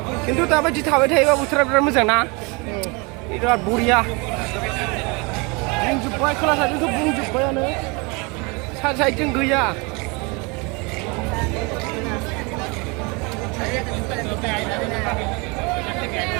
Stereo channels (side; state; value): left; quieter; 28.9 dB